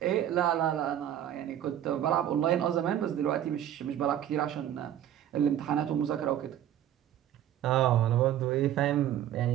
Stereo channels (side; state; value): left; quieter; 11.2 dB